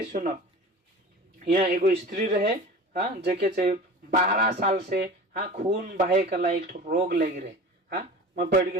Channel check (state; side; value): normal; both; correlation 0.37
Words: सुनो। यहाँ एगो स्त्री रहे हाँ जेके 12 साल से हाँ खून बहे कला एक रोग लग रहे हाँ मैं पढ़